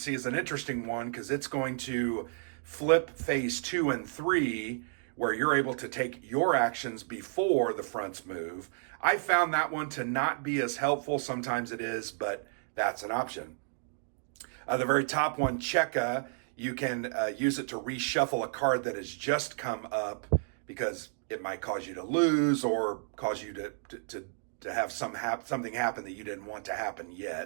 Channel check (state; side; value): silent; left; digital silence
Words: is an interesting one because it's going to flip phase 2 and 3, where you're able to take your actions before the fronts move. I found that one to not be as helpful. Sometimes it is, but that's an option. The very top one, Cheka, you can use it to reshuffle a card that has just come up because it might cause you to lose or cause you to have something happen that you didn't want to happen